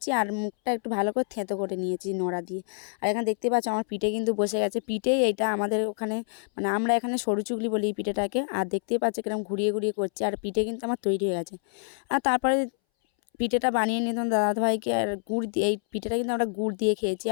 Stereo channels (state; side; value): silent; right; 60 dB below the other